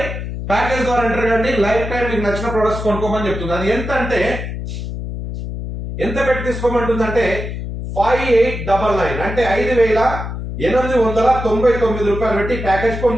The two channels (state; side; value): noise; left; hum, 6 dB below the sound